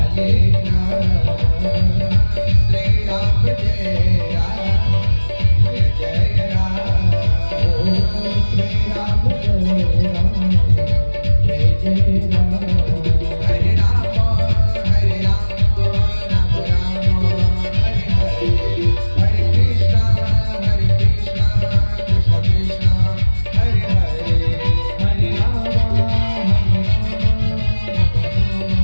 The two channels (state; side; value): inverted; both; correlation -1.00